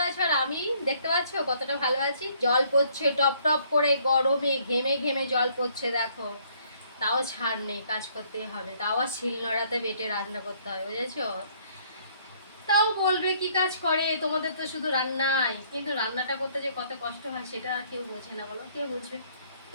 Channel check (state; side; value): inverted; both; correlation -0.63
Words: আছো। আর আমি দেখতে পাচ্ছ কতটা ভালো আছি। জল পড়ছে টপ টপ করে, গরমে ঘেমে ঘেমে জল পড়ছে দেখো। তাও ছাড় নেই, কাজ করতেই হবে। তাও আর শিলনোড়াতে বেটে রান্না করতে হবে, বুঝেছো? তাও বলবে কি কাজ করে, তোমাদের তো শুধু রান্নাই, কিন্তু রান্নাটা করতে যে কত কষ্ট হয় সেটা আর কেউ বোঝে না, বলো কেউ বুঝবে?